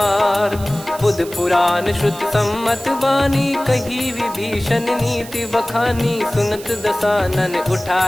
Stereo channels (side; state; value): right; noise; hiss, 16 dB below the sound